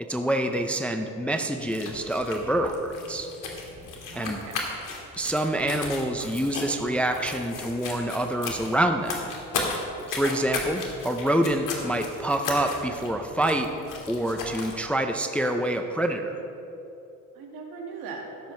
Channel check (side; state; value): both; normal; correlation 0.62